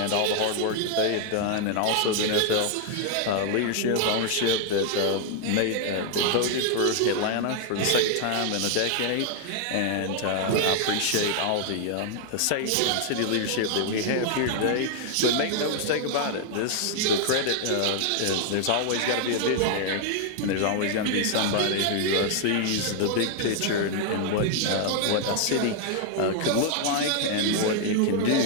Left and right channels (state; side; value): different; both; correlation 0.00